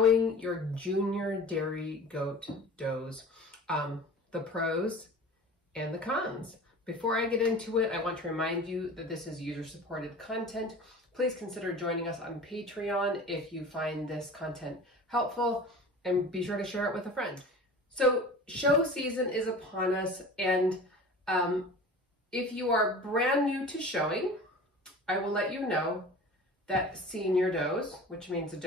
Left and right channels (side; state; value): both; normal; correlation 0.39